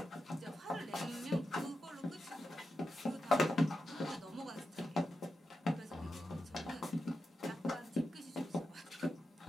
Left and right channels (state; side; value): normal; both; correlation 0.89